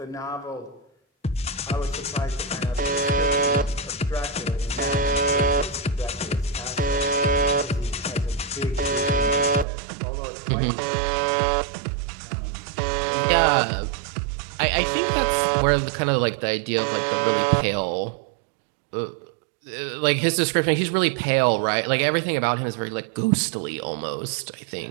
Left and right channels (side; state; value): left; drops out; at 9.7 s